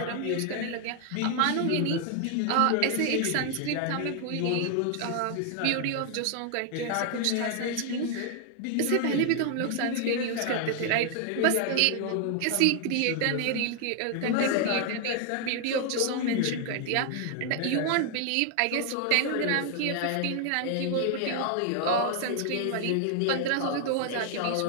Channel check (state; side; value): different; both; correlation 0.00